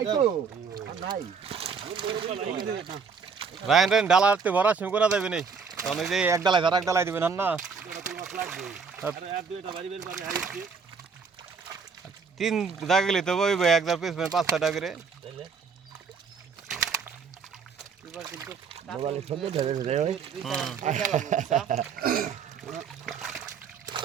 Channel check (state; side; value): quieter; left; 5.6 dB